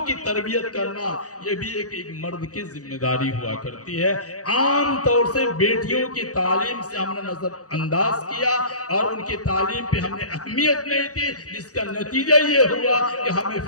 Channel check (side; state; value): right; late; 0.66 ms